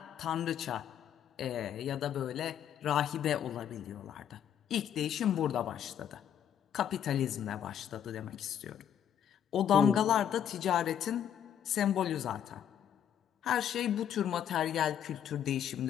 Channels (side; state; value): right; quieter; 9.4 dB